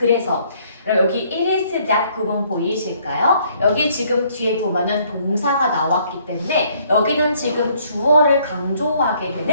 여기 it is that 구문 보이실까요? 여기 지금 뒤에 보면은 동사가 나왔기 때문에 여기는 지금 주어를 강조하게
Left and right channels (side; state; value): both; inverted; correlation -0.64